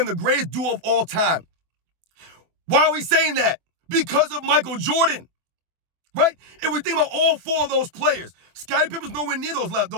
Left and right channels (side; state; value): left; late; 24 ms